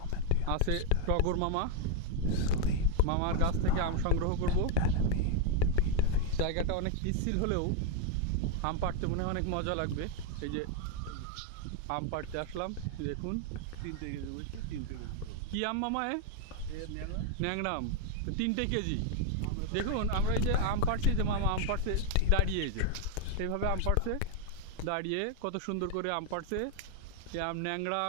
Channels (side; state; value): both; different; correlation 0.01